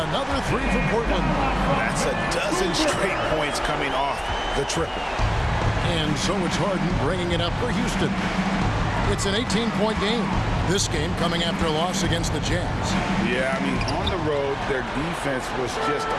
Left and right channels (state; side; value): identical; both; correlation 1.00